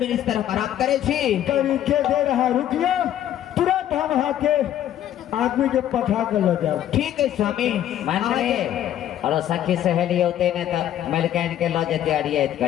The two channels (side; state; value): right; quieter; 11.5 dB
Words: हम आराम करे छी तरीके दे रहा रुकिए तुरंत हम यहाँ के आदमी के पठा कर ले जाओ ठीक है स्वामी मान रे और सखी सहेली होते ने तो मलकैन के लो जते अड़ियत